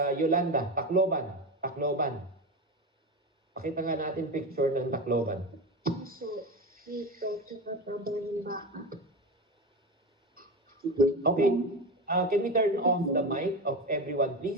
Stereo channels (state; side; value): normal; both; correlation 0.22